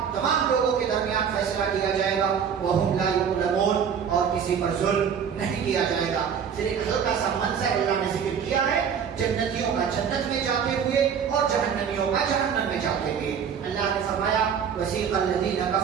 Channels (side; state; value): left; quieter; 7.4 dB